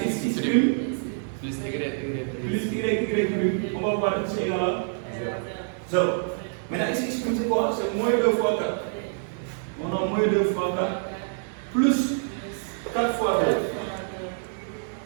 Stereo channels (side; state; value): left; silent; digital silence